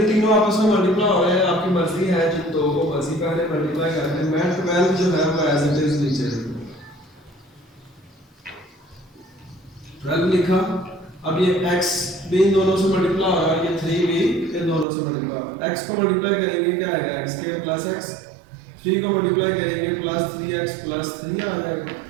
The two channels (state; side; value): drops out; left; at 14.9 s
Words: तीनों आपस में मल्टीप्लाई हो रहे हैं, आपकी मर्जी है जिन दो को मर्जी पहले मल्टीप्लाई करते हैं। मैं 12 जो है वो एज इट इज नीचे 12 लिखा। अब ये x भी इन दोनों से मल्टीप्लाई हो रहा है, ये 3 भी इन दोनों से मल्टीप्लाई हो रहा है। x को मल्टीप्लाई करेंगे क्या आएगा, x स्क्वायर प्लस x, 3 को मल्टीप्लाई करेंगे प्लस 3x प्लस 3 आ जाएगा।